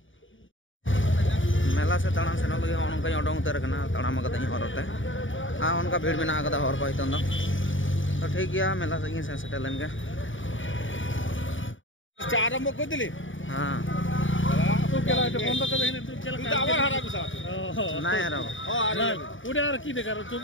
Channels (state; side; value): late; right; 0.56 ms